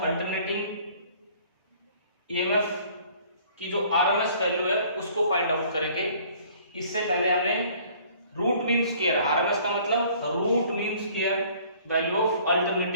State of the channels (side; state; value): both; inverted; correlation -0.55